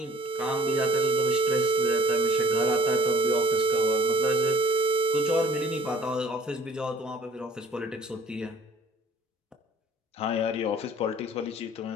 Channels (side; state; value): both; normal; correlation 0.53